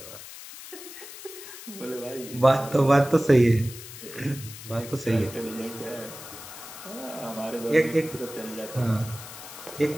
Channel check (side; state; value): left; noise; hiss, 13 dB below the sound